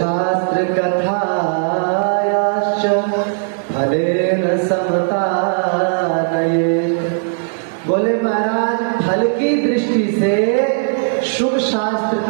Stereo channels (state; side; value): silent; left; 64 dB below the other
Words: कथायाश्च फलेन समता नये। बोले महाराज फल की दृष्टि से शुभ शास्त्र